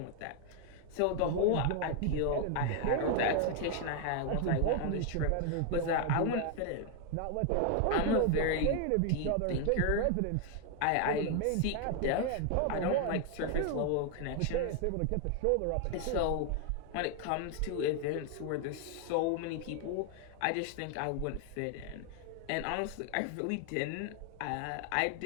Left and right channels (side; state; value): both; different; correlation 0.00